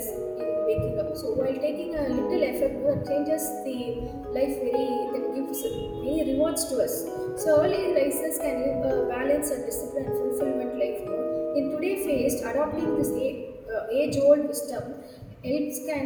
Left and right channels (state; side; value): identical; both; correlation 1.00